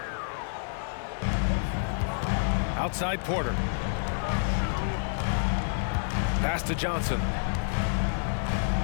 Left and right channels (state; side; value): silent; right; digital silence